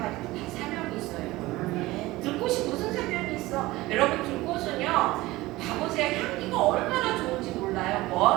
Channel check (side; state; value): left; quieter; 19.1 dB